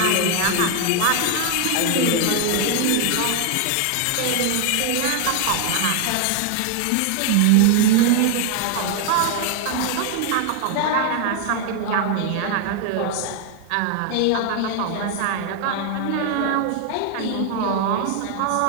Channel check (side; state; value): both; different; correlation 0.00